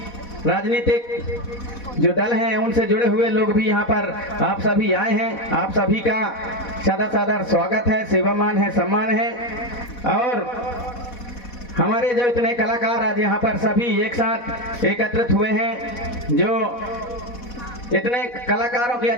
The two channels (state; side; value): late; right; 4.1 ms